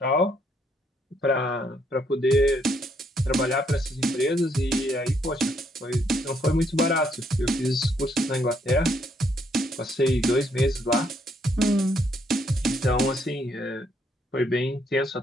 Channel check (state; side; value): normal; both; correlation 0.72